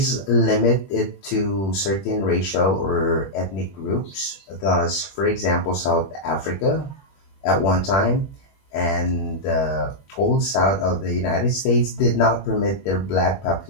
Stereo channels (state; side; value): late; right; 21 ms